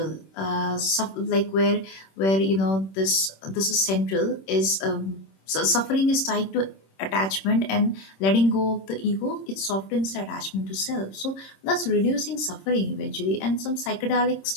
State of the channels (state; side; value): late; right; 26 ms